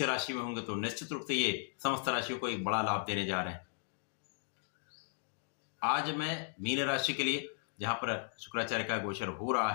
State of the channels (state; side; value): silent; right; digital silence